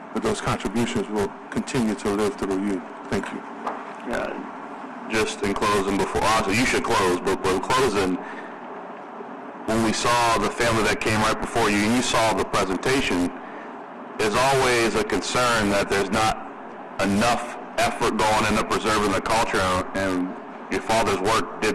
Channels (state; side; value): identical; both; correlation 1.00